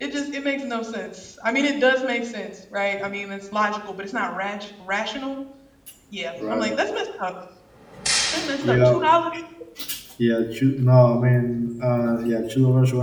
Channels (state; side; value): identical; both; correlation 1.00